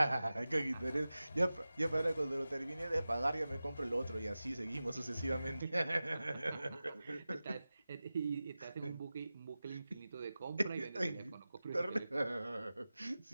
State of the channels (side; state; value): both; inverted; correlation -0.96